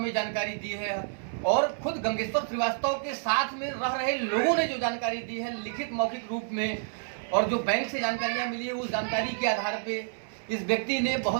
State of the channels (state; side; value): silent; left; 58 dB below the other